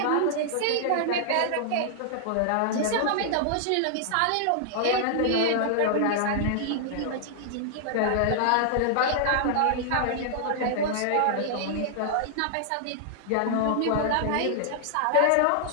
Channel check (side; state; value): both; different; correlation -0.01